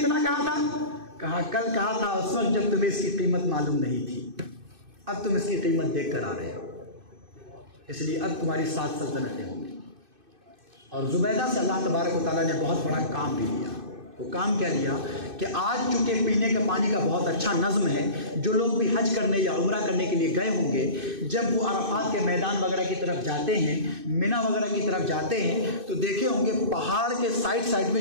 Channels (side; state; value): left; late; 2.6 ms